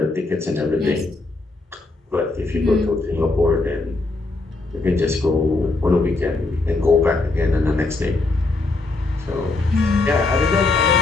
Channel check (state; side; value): quieter; right; 3.3 dB